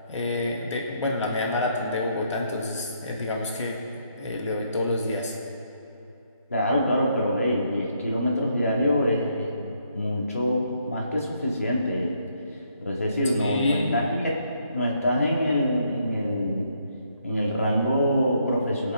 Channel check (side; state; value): both; inverted; correlation -0.73